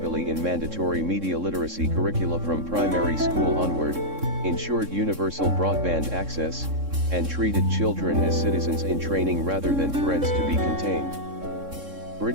in mandatory media literacy curricula from primary school onward, ensured universal broadband access, and treated children as citizens in training rather than threats to be contained.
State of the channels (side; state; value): left; late; 3.6 ms